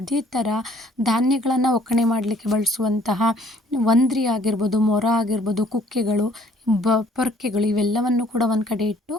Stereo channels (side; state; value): both; normal; correlation 0.59